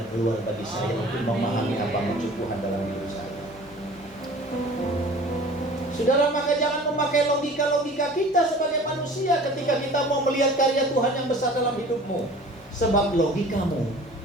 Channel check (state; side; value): normal; both; correlation 0.45